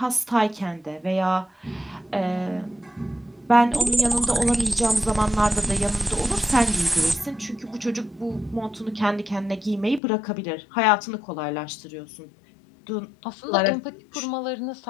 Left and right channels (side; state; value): right; drops out; at 10.0 s